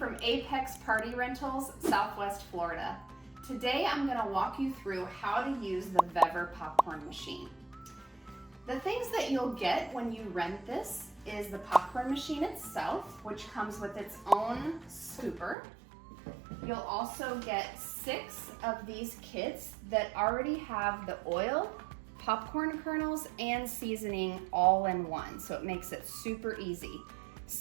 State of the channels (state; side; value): drops out; left; at 15.6 s